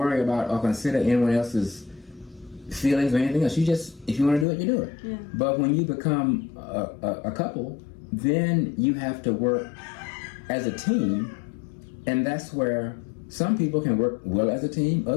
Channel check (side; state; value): right; drops out; at 4.5 s